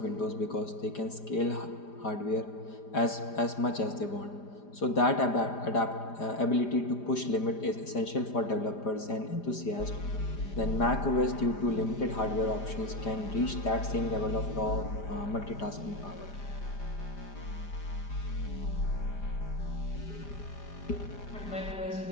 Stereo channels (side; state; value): right; late; 4.9 ms